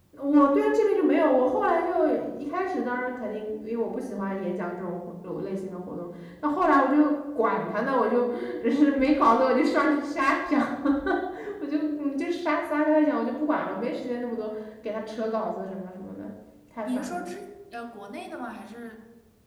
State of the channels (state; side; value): identical; both; correlation 1.00